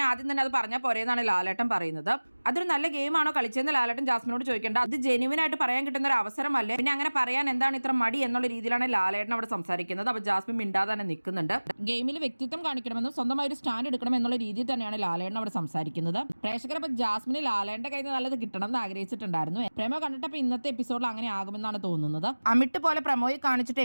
ആദ്യം തന്നെ അത് പറഞ്ഞാൽ പോരെന്നാണ് ലാലേട്ടൻ പറയുന്നത്. അതൊരു നല്ല ഗെയിമാണോ കളിച്ചതെന്ന് ലാലേട്ടൻ ജാസ്മിനോട് ചോദിക്കേണ്ട. അത് ജെന്യുവൻ ആയിട്ട് പറയാൻ കിട്ടുന്ന ഒരു അവസരമല്ലേ, പിന്നെ അങ്ങനെ പറയാൻ എന്താണ് ഇത്ര മടി എന്നുള്ള രീതിയിലാണ് ലാലേട്ടൻ അവിടെ സംസാരിക്കുന്നത്. അപ്പൊ ജാസ്മിൻ മിണ്ടാതെ തന്നെ നിൽക്കുന്നുണ്ട്. ഗെയിമിൽ വ്യക്തിത്വം കാണിക്കണമെന്നും സ്വന്തമായി ഒരു സ്റ്റാൻഡ് എടുക്കണം എന്നുള്ള രീതിയിൽ തന്നെയാണ് ലാലേട്ടൻ അവിടെ സംസാരിക്കുന്നത്. പ്രേക്ഷകർ അപ്പൊ ജാസ്മിന് ലാലേട്ടന്റെ കയ്യിൽ നിന്ന് നല്ലത് കിട്ടണം എന്ന് ആഗ്രഹിച്ചിട്ടുണ്ടായിരുന്നു. പ്രേമോ കണ്ടിട്ടപ്പോൾ ഇന്നത്തെ എപ്പിസോഡിൽ അങ്ങനെ ആകുമെന്നാണ് തോന്നുന്നത്. അമിട്ട് പോലെ പ്രമോയിൽ കാണിച്ചിട്ട്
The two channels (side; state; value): both; inverted; correlation -1.00